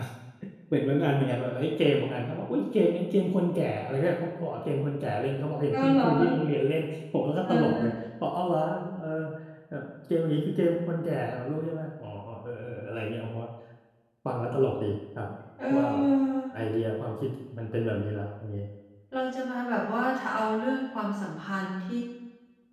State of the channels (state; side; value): identical; both; correlation 1.00